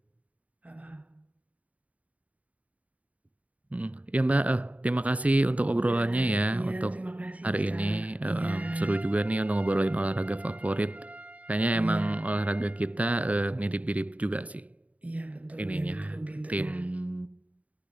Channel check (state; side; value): late; left; 0.069 ms